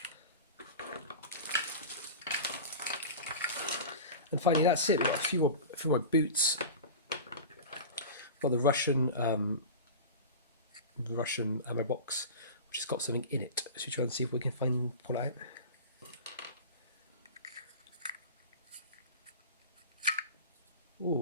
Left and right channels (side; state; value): both; inverted; correlation -0.31